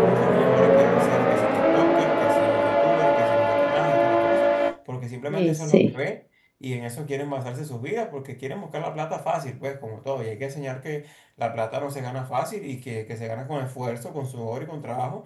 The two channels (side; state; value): both; identical; correlation 1.00